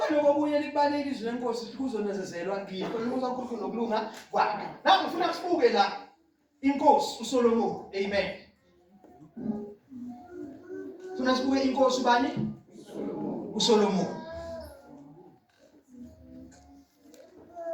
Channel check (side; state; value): both; identical; correlation 1.00